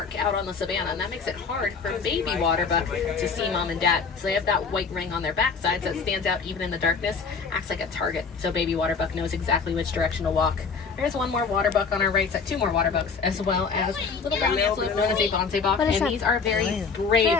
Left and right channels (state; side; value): quieter; right; 5.3 dB